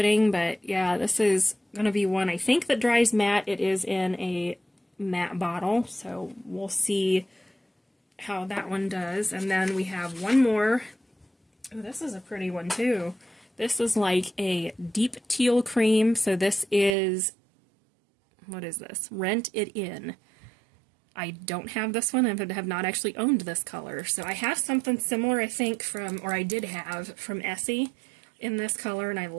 but yeah, this is going to be one I think that dries matte. It is in a matte bottle, so we'll see how that one does. And then we have one more. Oh, this is a pretty one too. This is like a deep teal cream, so this is, what is this? Rent It In. I don't have this one, and have not actually owned this color. So I have something similar, I think, from, or I did have, from Essie in this color, and I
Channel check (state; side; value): drops out; left; at 16.9 s